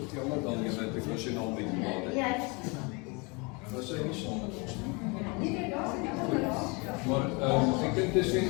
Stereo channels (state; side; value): quieter; right; 29.7 dB